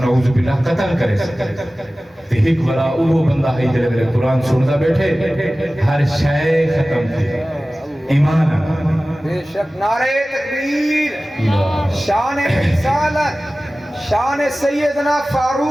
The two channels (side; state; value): both; normal; correlation 0.97